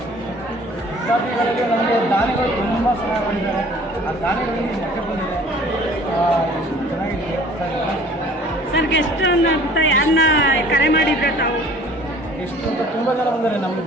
ವಿದ್ಯಾರ್ಥಿಗಳಲ್ಲಿ ನಮಗೆ ದಾನಿಗಳು ತುಂಬ ಸಹಾಯ ಮಾಡಿದ್ದಾರೆ. ಆ ದಾನಿಗಳಲ್ಲಿ ಮಟ್ಟೆ ಬಂದಿದೆ, ಚೆನ್ನಾಗಿದೆ ಸರ್. ಗೆಸ್ಟ್ ಅಂತ ಯಾರನ್ನ ಕರೆ ಮಾಡಿದ್ರೆ ತಾವು? ಎಷ್ಟು ಅಂತ ತುಂಬ ಜನ ಬಂದರೆ ನಮಗೆ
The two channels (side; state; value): both; normal; correlation 0.51